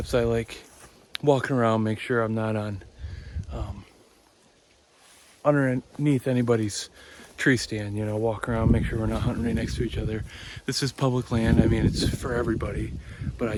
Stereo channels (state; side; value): identical; both; correlation 1.00